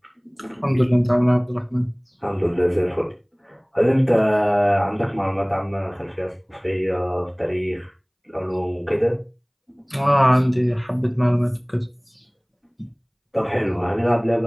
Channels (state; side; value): identical; both; correlation 1.00